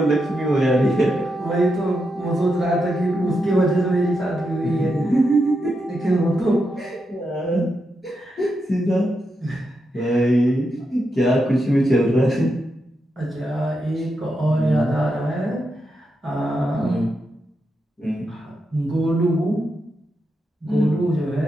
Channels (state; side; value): normal; both; correlation 0.85